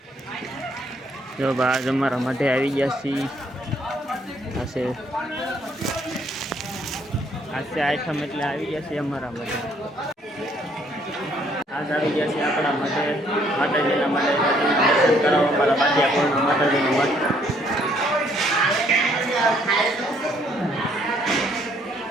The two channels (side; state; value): both; normal; correlation 0.66